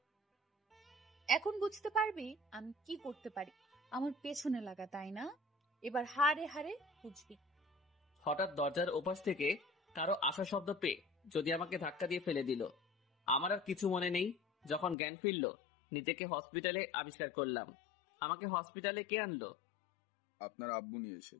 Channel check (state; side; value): drops out; right; at 15.0 s